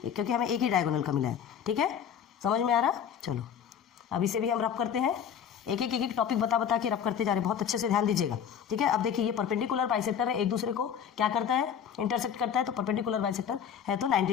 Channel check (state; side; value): quieter; right; 8.3 dB